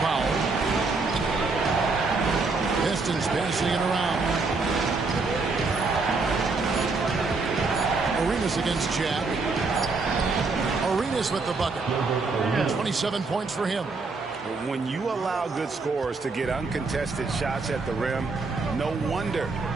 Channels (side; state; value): left; quieter; 4.0 dB